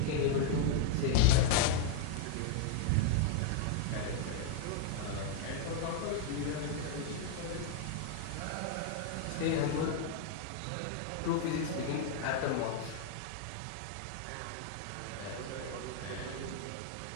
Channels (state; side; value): different; both; correlation 0.00